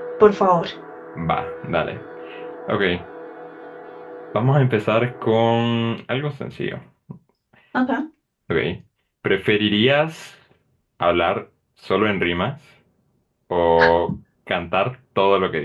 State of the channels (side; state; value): both; identical; correlation 1.00